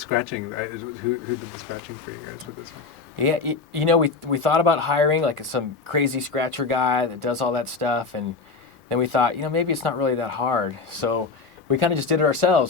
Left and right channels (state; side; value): quieter; right; 4.4 dB